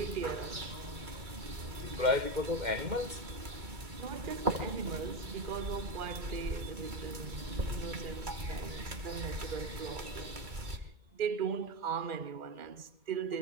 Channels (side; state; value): left; late; 2.3 ms